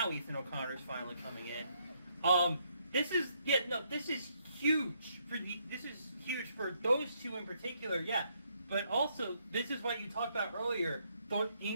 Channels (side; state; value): both; inverted; correlation -0.73